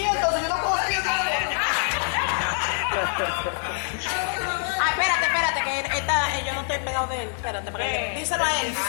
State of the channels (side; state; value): right; silent; 60 dB below the other